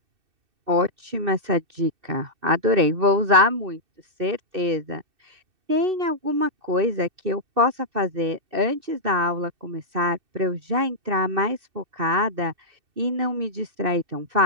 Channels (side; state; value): left; late; 2.6 ms